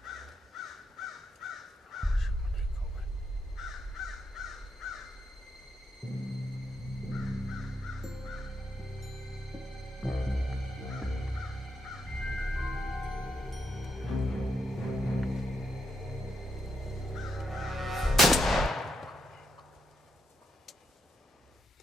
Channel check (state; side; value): normal; both; correlation 0.81